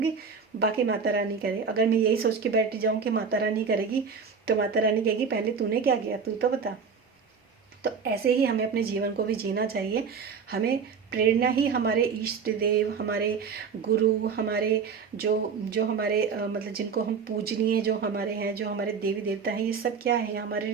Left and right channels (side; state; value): left; quieter; 5.9 dB